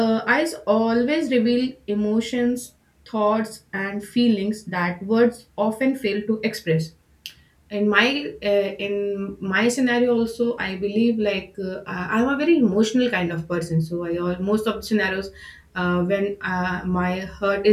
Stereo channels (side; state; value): both; identical; correlation 1.00